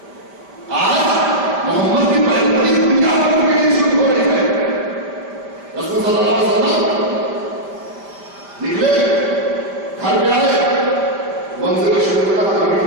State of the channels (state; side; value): late; left; 5.0 ms